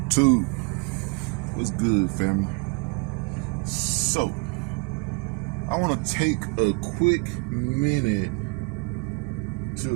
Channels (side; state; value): left; quieter; 30.7 dB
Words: What's good, family? So, I want to take a quick minute